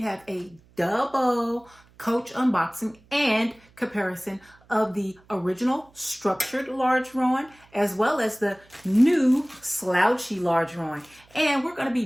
have a double Coach unboxing and comparison of the original structured large Rowan as well as the new Slouchy large Rowan. And we're going to be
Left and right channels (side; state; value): right; noise; hum, 29 dB below the sound